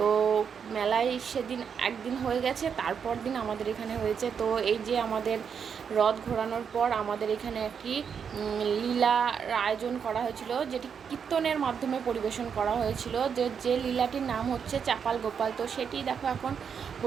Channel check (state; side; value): quieter; left; 7.0 dB